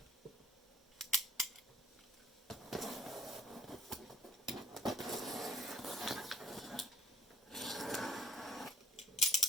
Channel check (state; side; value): normal; both; correlation 0.57